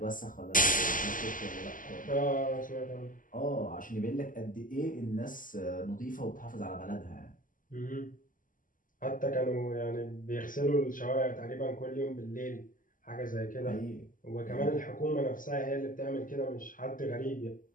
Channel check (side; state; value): right; late; 0.39 ms